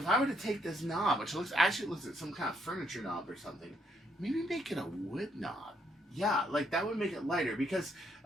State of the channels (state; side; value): normal; both; correlation 0.73